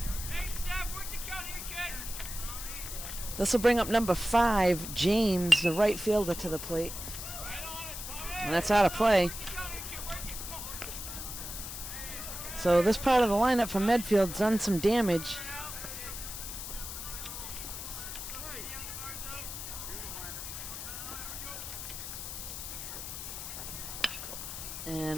This will bring up number 5, James, the right fielder, to the plate. And that's out of play. So this part of the lineup for Medfield's done some damage.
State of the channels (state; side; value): noise; left; hiss, 7 dB below the sound